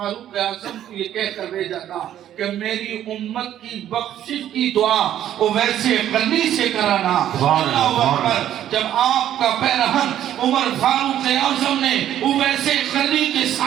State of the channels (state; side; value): quieter; left; 11.4 dB